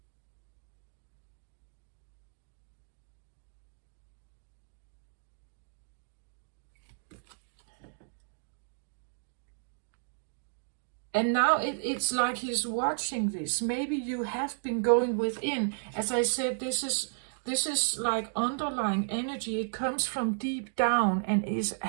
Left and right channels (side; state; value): left; silent; digital silence